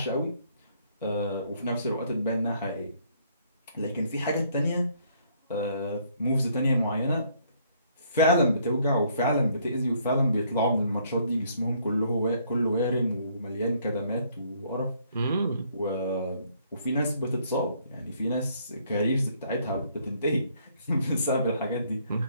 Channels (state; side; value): inverted; both; correlation -0.66